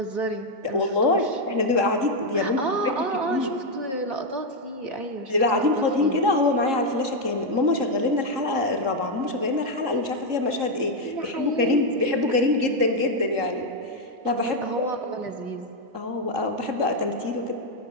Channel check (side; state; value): left; late; 3.7 ms